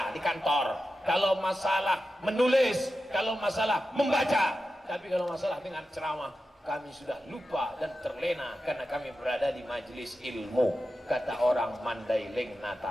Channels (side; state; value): both; normal; correlation 0.91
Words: di kantor, kalau masalah menulis, kalau masalah membaca. Tapi kalau masalah dengan ceramah, kami sudah lupa dan terlena karena kami berada di majelis ilmu, kata orang Mandailing